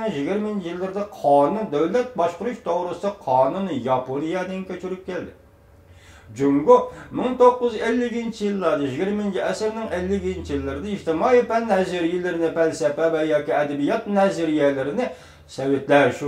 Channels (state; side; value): identical; both; correlation 1.00